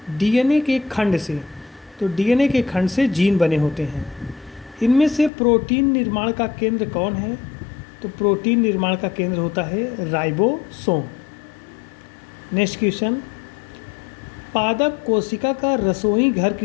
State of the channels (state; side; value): drops out; right; at 5.3 s